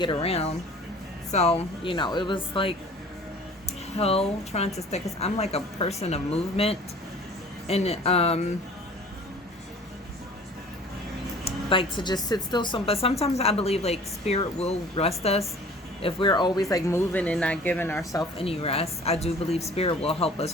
around. So it was like hell trying to stay, because I'm like a person of movement, and like to just sit still. But sometimes I believe like spirit will rest us if we're always like moving and not giving ourselves any rest. I do believe spirit will help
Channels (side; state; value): both; normal; correlation 0.47